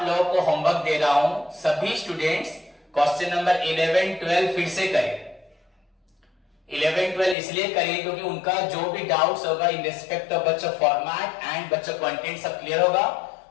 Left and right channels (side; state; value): right; drops out; at 7.4 s